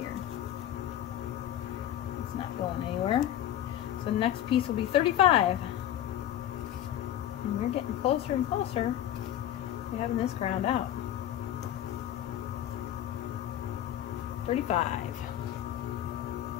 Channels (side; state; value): right; quieter; 11.7 dB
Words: It's not going anywhere. So the next piece will be 35. And we're getting closer and closer to having this ground out. 35.